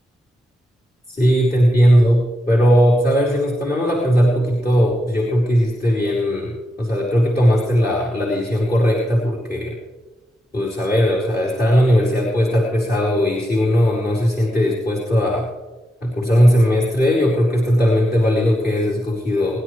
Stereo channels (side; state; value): both; normal; correlation 0.86